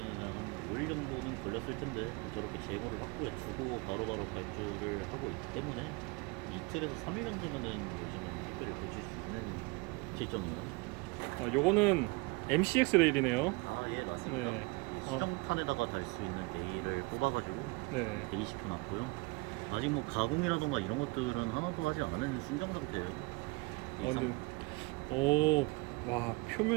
한 5일 정도는 걸렸을 텐데 저렇게 제거를 확보해 주고 바로바로 발주를 하고 있기 때문에 이틀에서 3일 정도면은 요즘은 택배를 보실 수 있는 실정이에요. 요거는 MCX 레일이네요. 예, 맞습니다. 수정탄에다가 달 수 있는 레일을 뽑아가지고 대기시켜놨고요. 아직 뭐 가공이라던가 이런 것들은 하나도 하지 않은 순정 상태예요.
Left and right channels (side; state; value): left; quieter; 26.5 dB